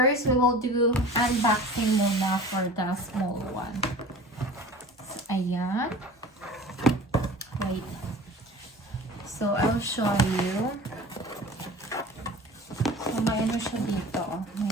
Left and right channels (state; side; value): normal; both; correlation 0.40